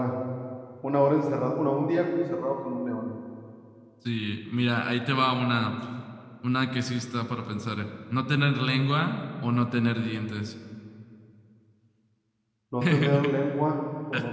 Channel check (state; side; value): identical; both; correlation 1.00